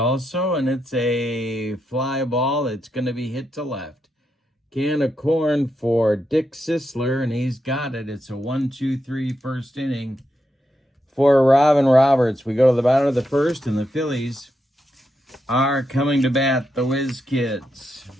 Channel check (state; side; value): normal; both; correlation 0.84